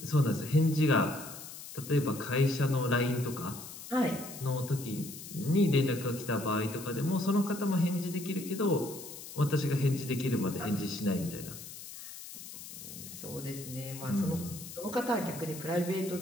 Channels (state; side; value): noise; left; hiss, 12 dB below the sound